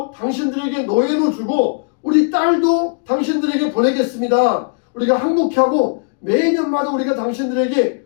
당신들에게 노예로 주고 우리 딸도 당신들에게 보내겠습니다. 우리가 항복하고 매년마다 우리가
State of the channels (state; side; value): quieter; right; 38.9 dB